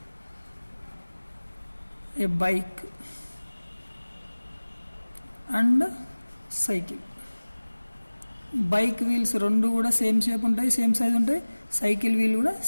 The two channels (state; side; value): inverted; both; correlation -1.00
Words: A bike and cycle. Bike wheels రెండు కూడా సేమ్ షేప్ ఉంటాయి, సేమ్ సైజ్ ఉంటాయి. సైకిల్ వీల్ కూడా